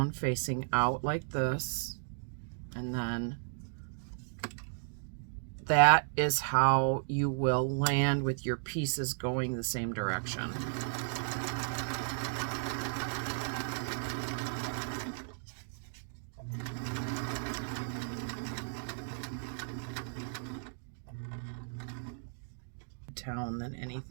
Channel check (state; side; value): silent; left; digital silence